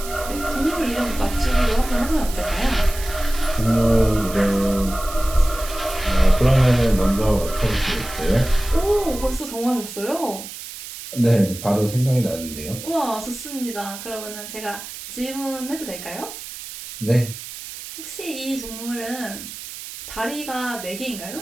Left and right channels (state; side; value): noise; right; hiss, 11 dB below the sound